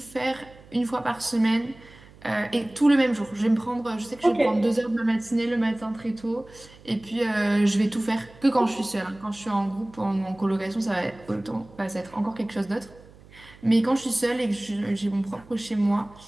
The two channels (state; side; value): noise; right; hum, 23 dB below the sound